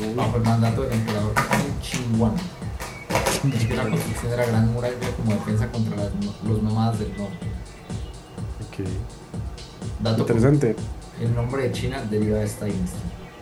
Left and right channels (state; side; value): identical; both; correlation 1.00